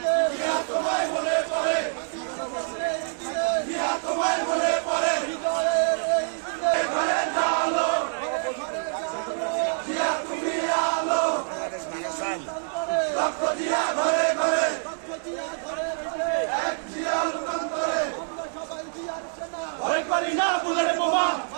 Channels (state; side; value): silent; left; digital silence